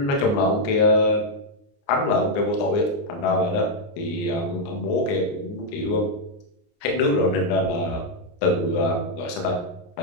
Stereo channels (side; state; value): right; late; 29 ms